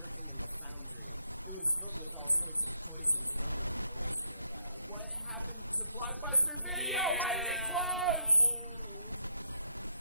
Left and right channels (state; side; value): inverted; both; correlation -0.75